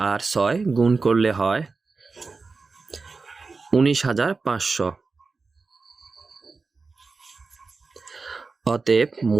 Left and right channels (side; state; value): left; quieter; 4.2 dB